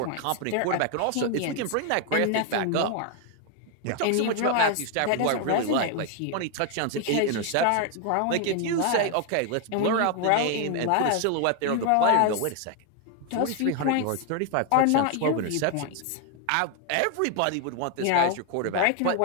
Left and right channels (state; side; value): different; both; correlation 0.01